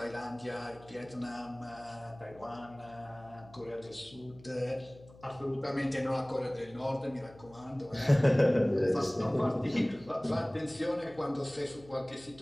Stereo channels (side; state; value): left; noise; hum, 22 dB below the sound